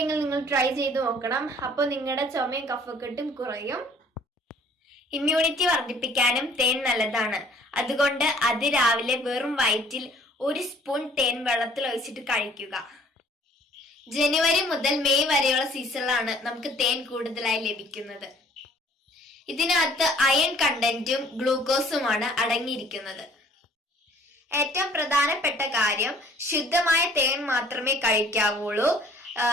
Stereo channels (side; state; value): both; normal; correlation 0.56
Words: നിങ്ങൾ ട്രൈ ചെയ്ത് നോക്കണം. അപ്പോൾ നിങ്ങളുടെ ചുമയും കഫക്കെട്ടും കുറയും. ഇമ്മ്യൂണിറ്റി വർദ്ധിപ്പിക്കാനും തേൻ നല്ലതാണ്. അതുകൊണ്ട് രാവിലെ വെറും വയറ്റിൽ 1 സ്പൂൺ തേൻ വെള്ളത്തിൽ ഒഴിച്ചിട്ട് കഴിക്കുക. ജനുവരി മുതൽ മെയ് വരെയുള്ള സീസണിലാണ് നമുക്ക് തേൻ കൂടുതലായി ലഭിക്കുന്നത്. ഇതിനകത്ത് അയൺ കണ്ടന്റും ഗ്ലൂക്കോസുമാണ് അടങ്ങിയിരിക്കുന്നത്. ഏറ്റവും പ്രധാനപ്പെട്ട കാര്യം, ശുദ്ധമായ തേൻ മാത്രമേ കഴിക്കാവുള്ളൂ.